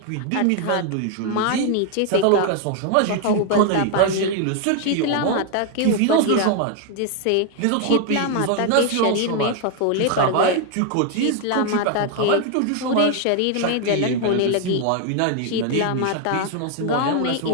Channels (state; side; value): different; both; correlation 0.01